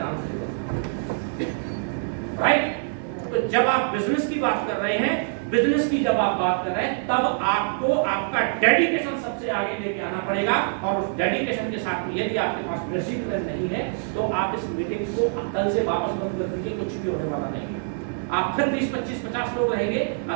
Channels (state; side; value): silent; left; 59 dB below the other